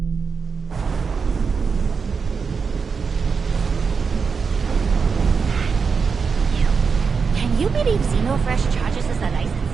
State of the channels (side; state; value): left; quieter; 5.5 dB